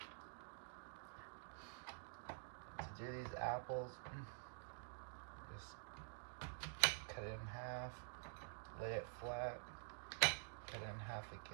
To do these apples, just cut it in half, lay it flat, cut it in half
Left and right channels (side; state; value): left; silent; digital silence